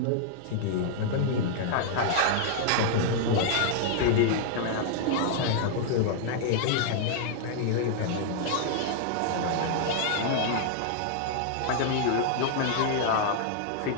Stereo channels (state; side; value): different; both; correlation -0.01